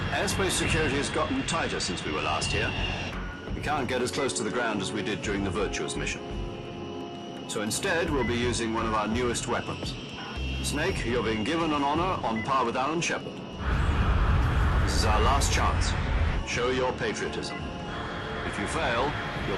Airspace security has gotten tighter since we were last here. We can't get as close to the ground as we did during the Virtuous mission. So instead, we'll be using one of our newest weapons. Snake, you're being given an honor on par with Alan Shepard. This is our last chance. Show your patriotism. If you fail, you'll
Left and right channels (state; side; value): identical; both; correlation 1.00